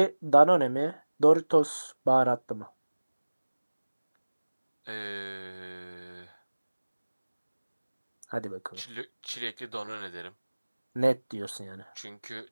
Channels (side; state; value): both; inverted; correlation -1.00